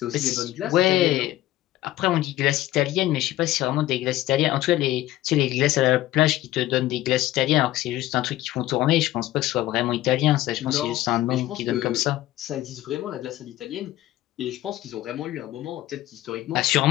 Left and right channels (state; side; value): quieter; right; 15.3 dB